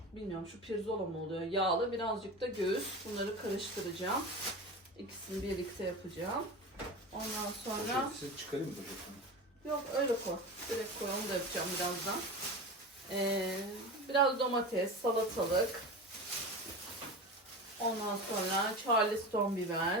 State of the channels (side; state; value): both; normal; correlation 0.28